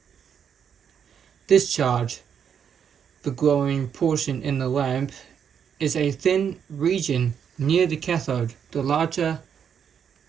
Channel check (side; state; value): left; quieter; 7.9 dB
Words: Discharge, the glowing portion in the lamp, is a thin region near the cathode. The larger